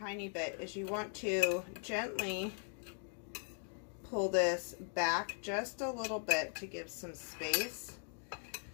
bit, is you want to gently pull this back just a little bit to give some space.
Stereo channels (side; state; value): right; silent; 51 dB below the other